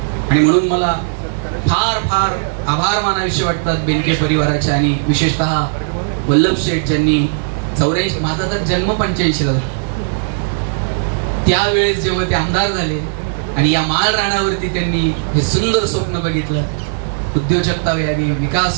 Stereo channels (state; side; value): silent; left; digital silence